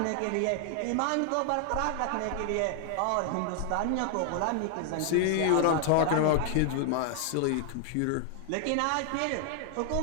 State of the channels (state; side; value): different; both; correlation 0.00